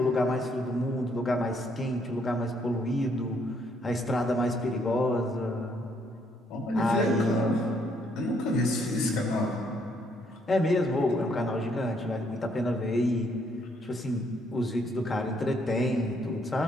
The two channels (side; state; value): both; normal; correlation 0.70